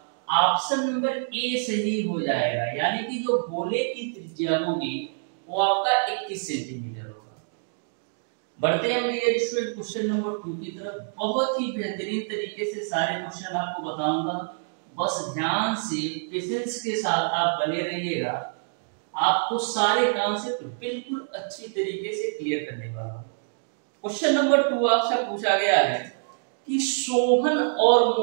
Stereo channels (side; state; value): left; silent; digital silence